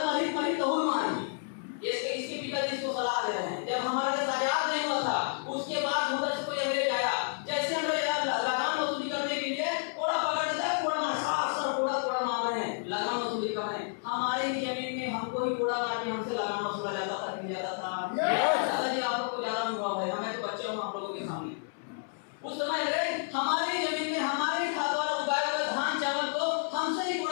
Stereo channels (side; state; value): right; silent; digital silence